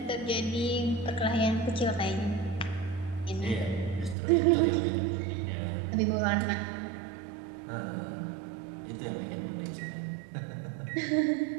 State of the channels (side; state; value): left; drops out; at 4.2 s